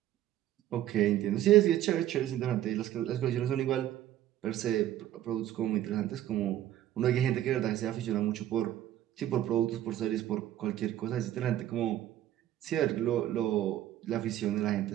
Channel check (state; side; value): quieter; left; 12.7 dB